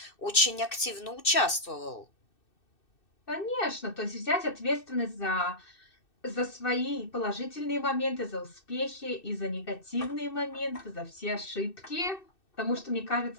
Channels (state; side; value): late; right; 2.6 ms